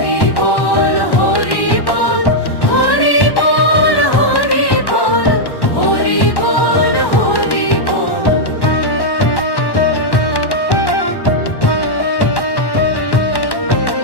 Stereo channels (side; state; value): right; late; 1.1 ms